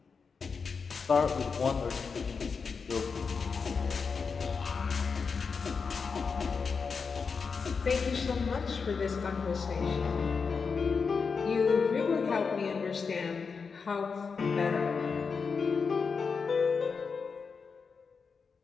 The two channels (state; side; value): quieter; right; 5.3 dB